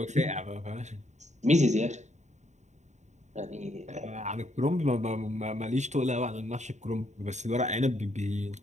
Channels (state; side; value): late; left; 0.34 ms